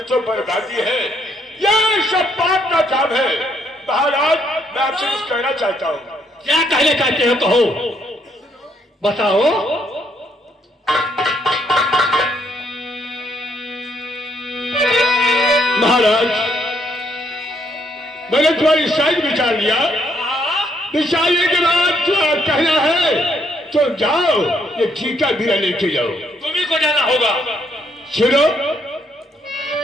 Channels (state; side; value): normal; both; correlation 0.71